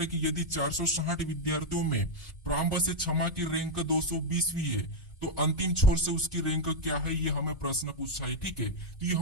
कि यदि 460 विद्यार्थियों में प्रारंभ से क्षमा की रैंक 220वीं है, तो अंतिम छोर से उसकी रैंक क्या है, ये हमें प्रश्न पूछा है। ठीक है, तो ये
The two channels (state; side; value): normal; both; correlation 0.00